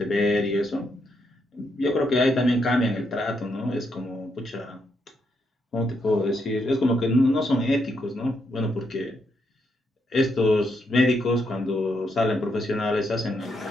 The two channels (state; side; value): normal; both; correlation 0.79